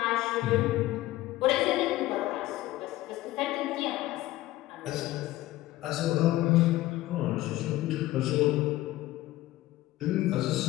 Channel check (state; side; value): quieter; right; 16.6 dB